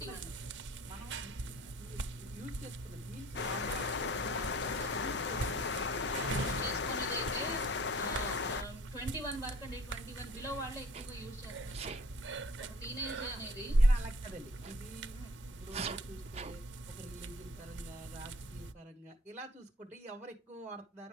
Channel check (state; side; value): normal; both; correlation 0.52